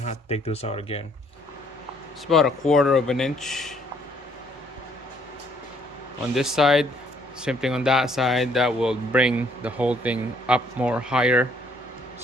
have to take this out again. It's about a quarter of an inch on this side, same thing on that side. That will bring the whole thing up more higher.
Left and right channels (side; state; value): both; normal; correlation 0.65